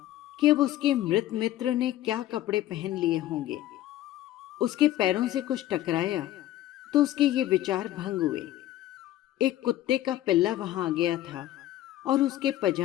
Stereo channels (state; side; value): quieter; right; 13.9 dB